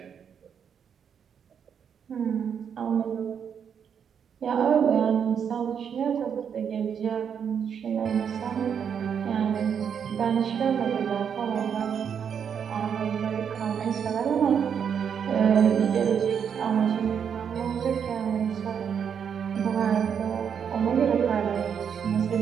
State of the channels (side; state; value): left; quieter; 7.6 dB